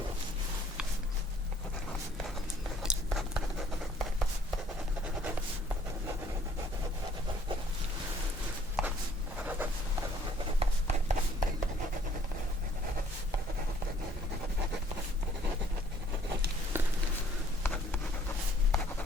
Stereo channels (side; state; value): both; normal; correlation 0.61